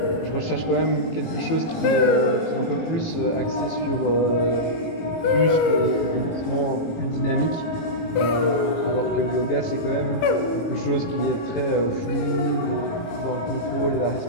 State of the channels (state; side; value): late; right; 18 ms